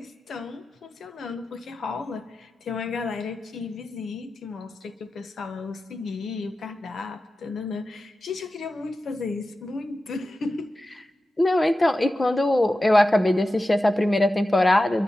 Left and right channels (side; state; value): both; normal; correlation 0.93